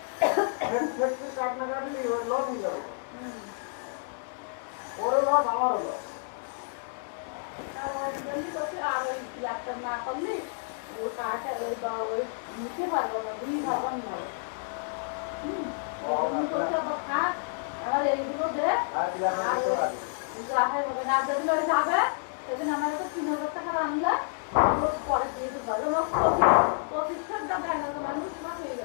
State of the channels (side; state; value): right; silent; digital silence